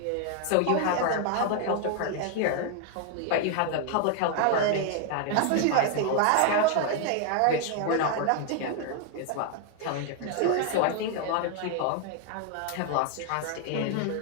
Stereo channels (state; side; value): different; both; correlation 0.00